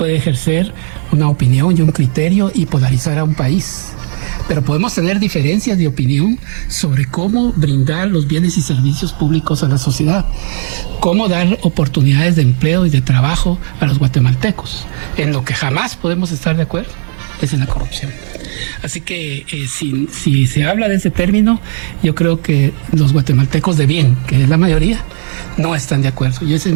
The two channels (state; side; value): silent; left; digital silence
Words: ejercer una opinión y un criterio y polarizar a un país. Pero podemos tener diferencias de opinión sobre cómo brindar los bienes y servicios públicos a la sociedad, cómo dar oportunidades de empleo y de trabajo a los guatemaltecos. En lo que jamás podemos estar de acuerdo es en la corrupción. Así que si se habla de ese término, yo creo que los guatemaltecos de bien, que es la mayoría, no están de acuerdo. Y esa es